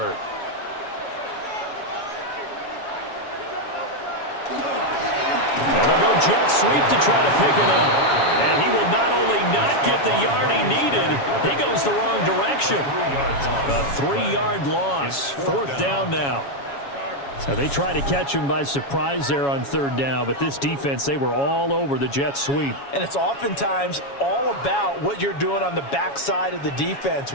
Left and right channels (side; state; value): right; late; 7.2 ms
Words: And they'll go jet sweep to try to pick it up. And he will not only not get the yard he needed, he goes the wrong direction. A 3-yard loss. 4th down now. So they try to catch him by surprise there on 3rd down, but this defense, they were all over the jet sweep. And it's oftentimes all about what you're doing on the backside of the defense,